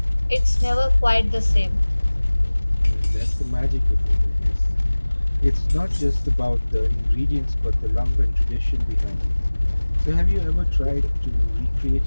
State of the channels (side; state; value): both; inverted; correlation -1.00